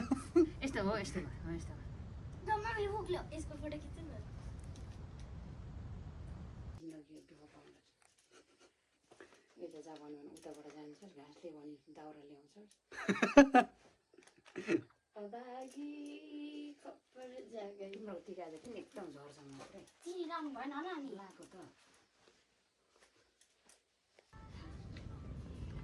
यस्तो हो, यस्तो हो, यस्तो यसको फोटो खिच्नु न। यता जा भन्यो भने उताबाट जान्छस्, घाँसले भने दाउरा ल्याउँछस्। तिम्रो टिका चाहिँ किन एकदम झर्छ मात्रै, चिनी लानु भएन होला नि लाएको त।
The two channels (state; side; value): identical; both; correlation 1.00